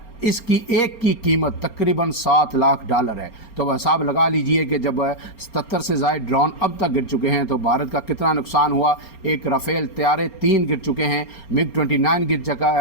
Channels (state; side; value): late; right; 4.3 ms